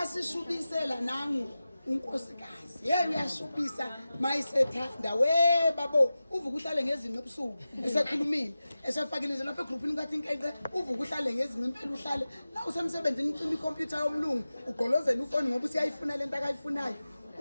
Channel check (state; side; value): inverted; both; correlation -0.95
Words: nangu unkosikazi hey uyashubisa mayisethanda we babo uvuka uhlale ngezinqe ebusuku esekhulumile esefakile nje lapha egroupini kathi inkeqe uvuka uhlale ngezinqe impela uhlale la usemsebenzini ucima ikhompyutha yomlungu ugqolozela ufoni ngoba usiyayifuna lento akayifunayo